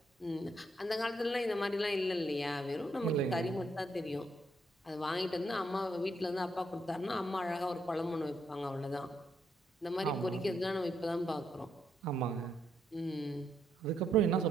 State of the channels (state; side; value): normal; both; correlation 0.77